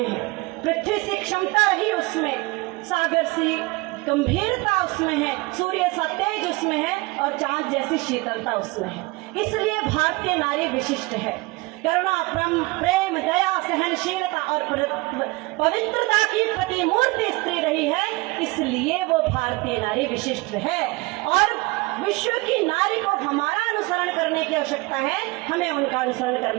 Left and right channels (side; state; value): left; quieter; 23.8 dB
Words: हैं। पृथ्वी सी क्षमता रही उसमें, सागर सी गंभीरता उसमें है, सूर्य सा तेज उसमें है और चांद जैसी शीतलता उसमें है। इसलिए भारतीय नारी विशिष्ट है। करुणा, प्रेम, दया, सहनशीलता और पवित्रता की प्रतिमूर्ति स्त्री रही है, इसलिए वो भारतीय नारी विशिष्ट है। और विश्व की नारी को हमारा अनुसरण करने की आवश्यकता है, हमें उनका अनुसरण